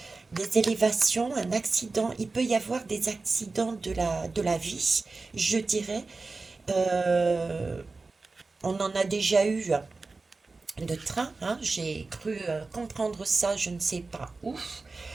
des élévations, un accident. Il peut y avoir des accidents de la vie, je dirais. Euh, on en a déjà eu de train, hein. J'ai cru comprendre ça, je ne sais pas où.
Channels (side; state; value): left; quieter; 3.8 dB